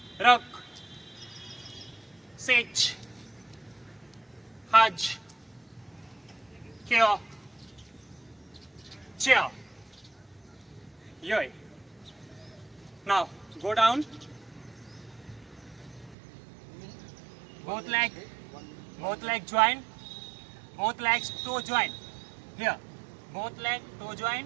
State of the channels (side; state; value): left; drops out; at 16.2 s